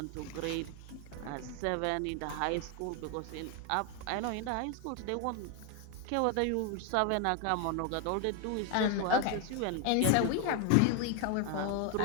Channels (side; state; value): both; different; correlation 0.01